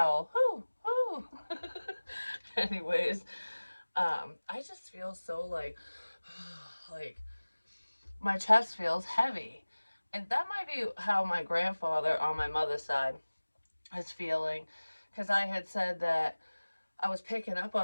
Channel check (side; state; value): both; inverted; correlation -1.00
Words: whew, whew. Anyways, I just feel so like my chest feels heavy. And that might be how my grandfather on my mother's side is feeling. Because I had said that I was picking up